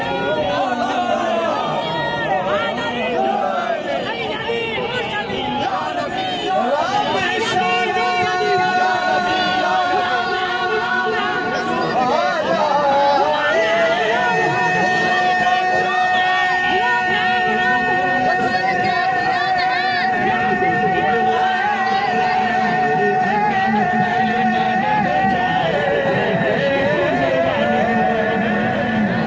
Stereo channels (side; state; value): both; identical; correlation 1.00